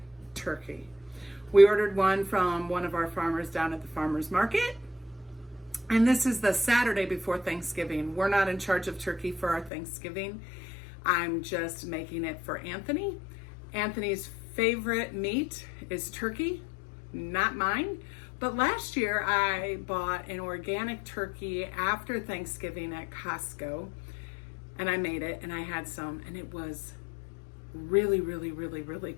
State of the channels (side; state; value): right; drops out; at 9.7 s